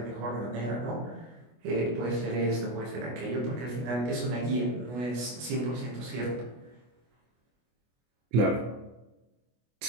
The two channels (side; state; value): left; late; 25 ms